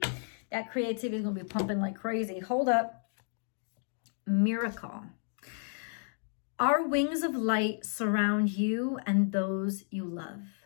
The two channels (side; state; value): right; silent; 56 dB below the other